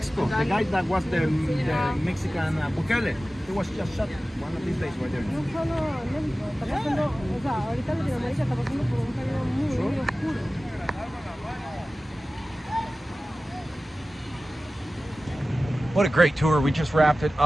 The guy that was the Mexican Bukele, he was just shot one of these days right there. No solo en México, está pasando, o sea, ahorita Latinoamérica está pasando por un periodo muy oscuro. What a great tour. We just wrapped it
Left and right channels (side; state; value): both; normal; correlation 0.96